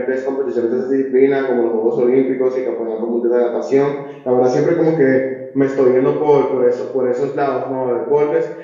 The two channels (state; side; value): identical; both; correlation 1.00